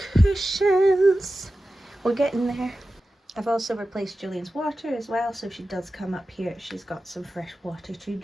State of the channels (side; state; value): both; normal; correlation 0.94